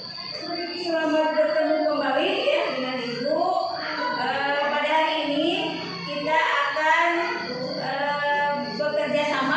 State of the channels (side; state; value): both; identical; correlation 1.00